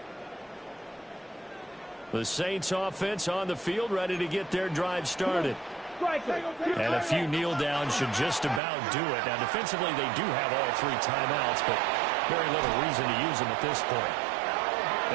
The Saints offense on the field ready to get their drive started. And a few kneel downs should just about do it. Now defensively they do have all 3 timeouts, but very little reason to use them at this point.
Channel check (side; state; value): left; drops out; at 8.6 s